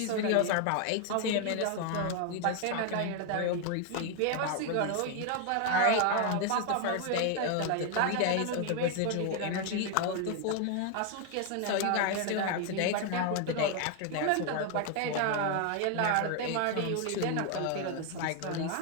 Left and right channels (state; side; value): different; both; correlation 0.01